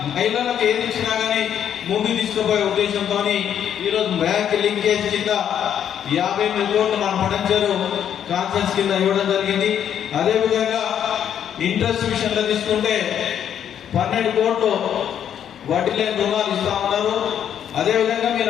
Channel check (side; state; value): right; quieter; 9.3 dB